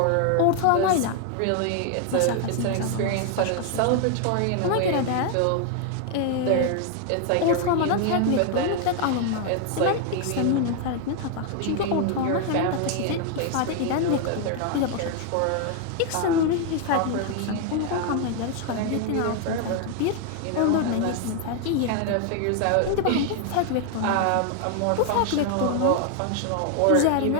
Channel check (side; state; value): both; different; correlation 0.00